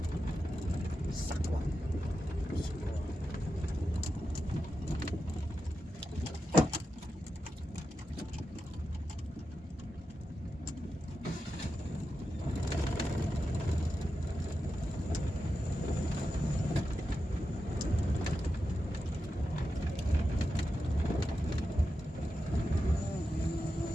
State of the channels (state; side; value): normal; both; correlation 0.90